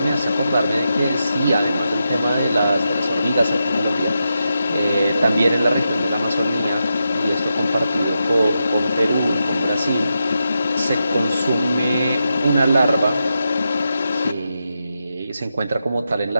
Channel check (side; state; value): both; inverted; correlation -0.87